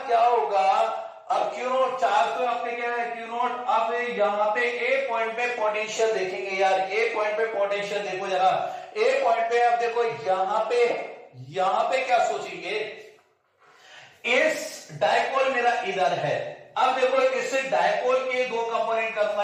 क्या होगा, अब क्यू नॉट चार्ज तो आपके क्या है क्यू नॉट, अब यहाँ पे ए पॉइंट पे पोटेंशियल देखेंगे यार, ए पॉइंट पे पोटेंशियल देखो जरा, ए पॉइंट पे अब देखो यहाँ पे क्या सोचेंगे, इस डाइपोल मेरा इधर है, अब देखो इस डाइपोल के दो कंपोनेंट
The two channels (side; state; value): both; identical; correlation 1.00